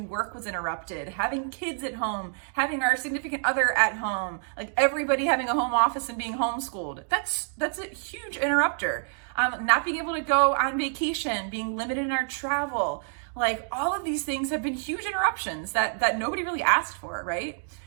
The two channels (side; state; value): left; silent; 60 dB below the other